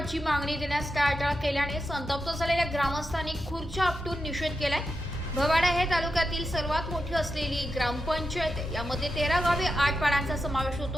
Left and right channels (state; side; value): normal; both; correlation 0.88